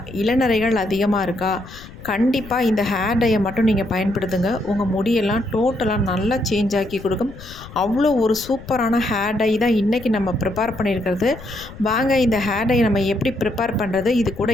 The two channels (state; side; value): noise; left; rumble, 17 dB below the sound